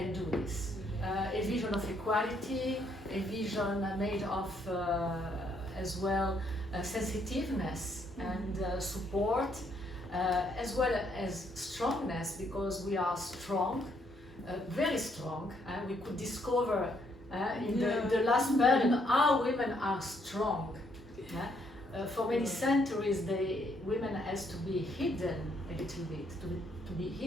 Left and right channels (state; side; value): normal; both; correlation 0.71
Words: do this. A vision of equality, a vision made of as well sensitiveness and support, as well as strongness, because we are strong, very strong. We could discover in the last period how women are strong. For many centuries, women has to be hidden a little bit, to be